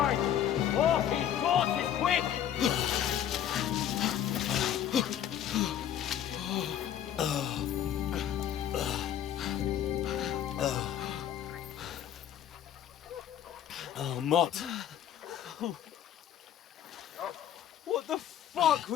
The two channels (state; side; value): quieter; right; 10.3 dB